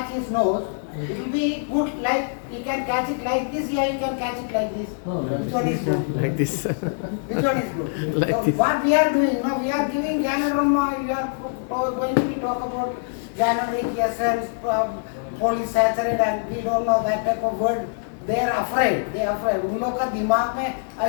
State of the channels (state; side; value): silent; right; 63 dB below the other